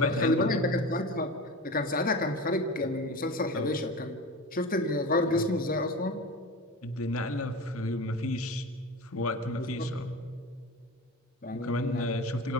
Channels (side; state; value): both; normal; correlation 0.29